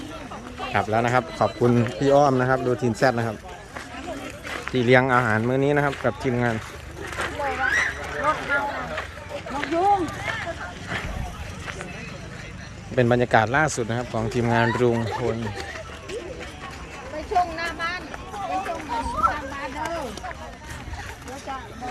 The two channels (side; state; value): both; identical; correlation 1.00